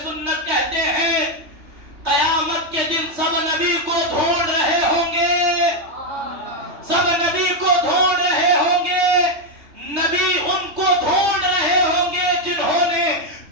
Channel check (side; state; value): left; late; 3.3 ms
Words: سنت کہتے ہیں قیامت کے دن سب نبی کو ڈھونڈ رہے ہوں گے, سب نبی کو ڈھونڈ رہے ہوں گے. نبی ان کو ڈھونڈ رہے ہوں گے جنہوں نے